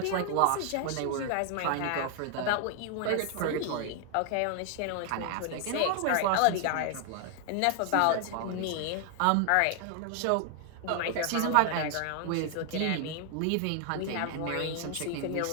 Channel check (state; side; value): different; both; correlation 0.00